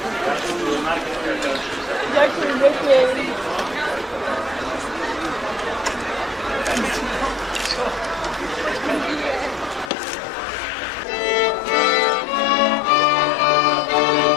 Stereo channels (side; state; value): right; drops out; at 9.9 s